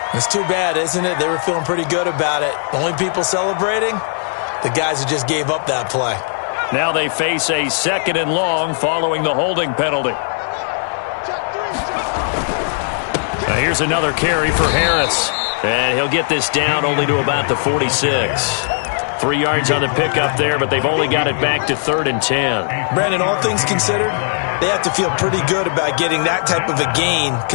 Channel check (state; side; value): silent; right; 66 dB below the other